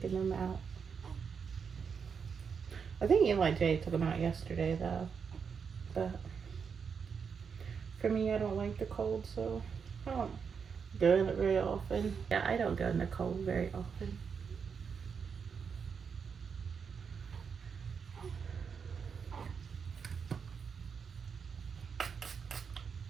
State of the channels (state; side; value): quieter; left; 6.3 dB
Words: them out. I think Eli J took them out yesterday though, but for me, I don't like the cold, so I don't go in it very often. Yeah, I don't go in the cold very often.